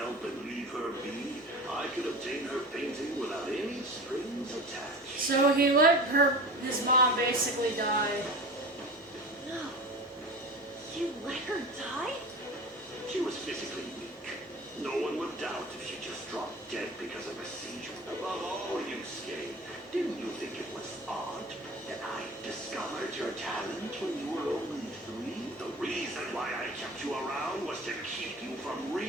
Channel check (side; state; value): both; normal; correlation 0.34